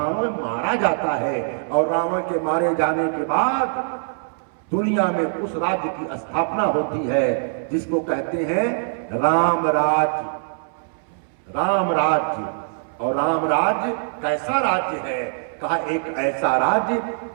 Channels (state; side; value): silent; left; 64 dB below the other